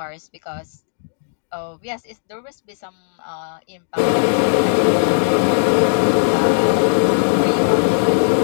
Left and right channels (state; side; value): silent; right; digital silence